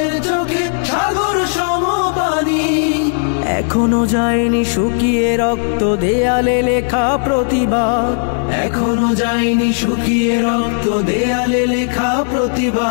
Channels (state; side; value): silent; right; digital silence